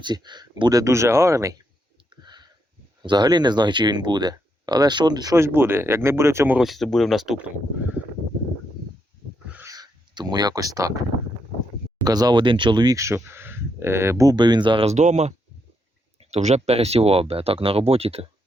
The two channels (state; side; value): normal; both; correlation 0.79